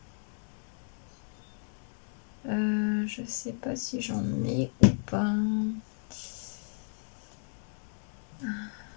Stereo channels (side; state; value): right; silent; 56 dB below the other